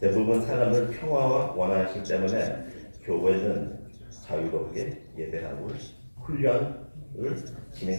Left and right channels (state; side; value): inverted; both; correlation -1.00